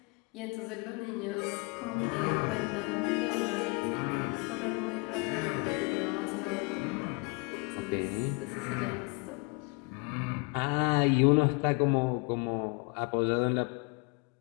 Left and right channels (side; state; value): right; quieter; 31.0 dB